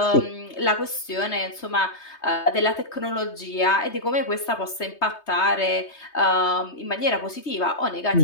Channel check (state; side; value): late; right; 3.2 ms